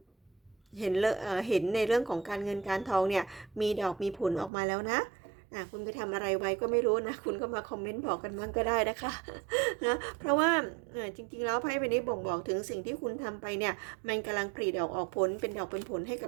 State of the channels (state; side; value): drops out; left; at 4.5 s